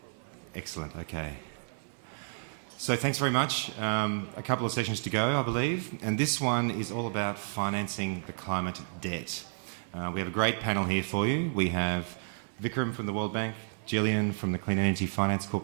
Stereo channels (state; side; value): silent; left; 57 dB below the other